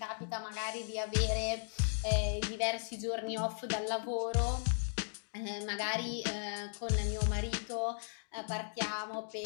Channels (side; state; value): right; silent; digital silence